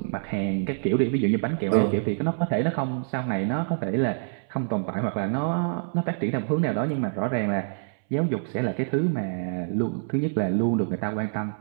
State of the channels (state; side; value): silent; left; 61 dB below the other